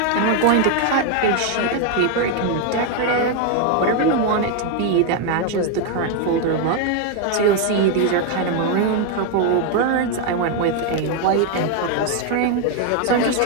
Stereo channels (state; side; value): different; both; correlation 0.01